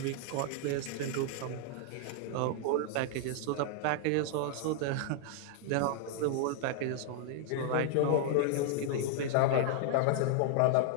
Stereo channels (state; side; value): different; both; correlation 0.00